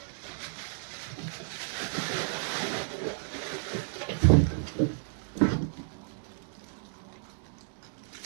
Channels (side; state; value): left; silent; digital silence